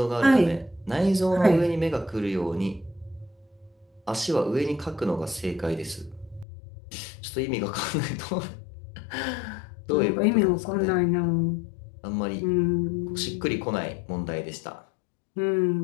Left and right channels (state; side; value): drops out; right; at 6.5 s